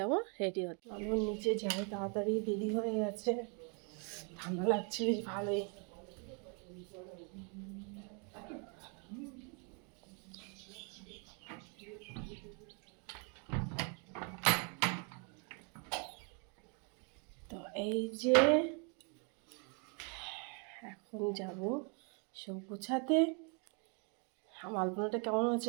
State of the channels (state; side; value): quieter; left; 36.9 dB